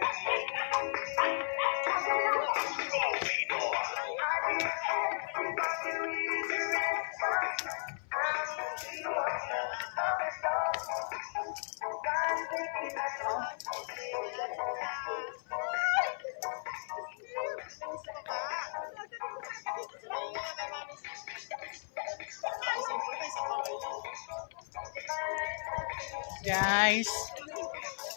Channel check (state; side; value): silent; right; 54 dB below the other